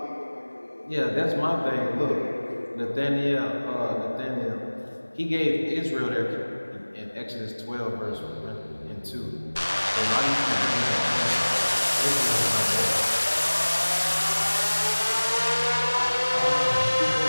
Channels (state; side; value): inverted; both; correlation -1.00